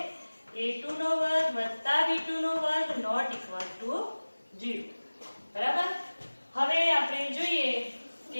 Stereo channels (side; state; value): both; inverted; correlation -1.00